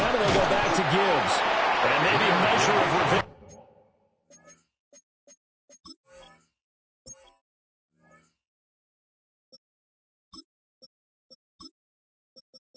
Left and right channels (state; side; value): identical; both; correlation 1.00